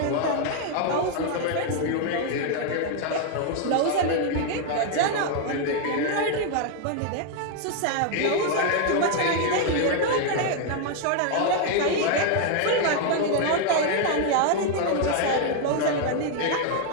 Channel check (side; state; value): both; different; correlation 0.00